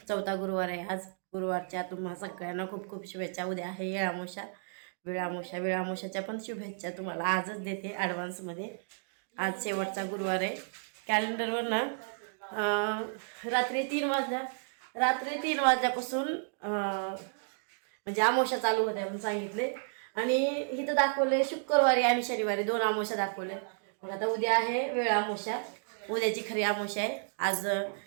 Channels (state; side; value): silent; left; digital silence